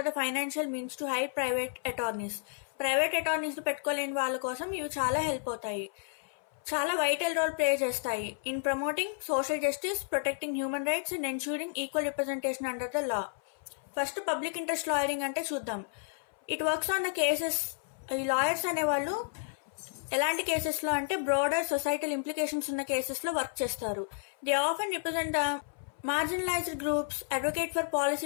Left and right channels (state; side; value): silent; right; 57 dB below the other